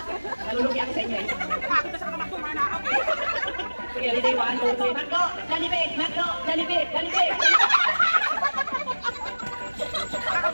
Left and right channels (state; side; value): inverted; both; correlation -1.00